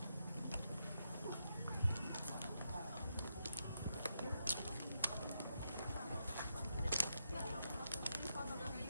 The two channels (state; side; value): inverted; both; correlation -0.82